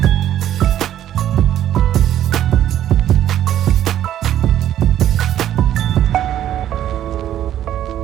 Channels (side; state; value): left; quieter; 11.5 dB